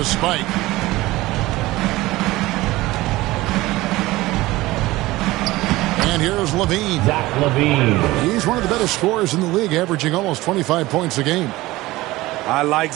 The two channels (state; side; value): quieter; left; 18.7 dB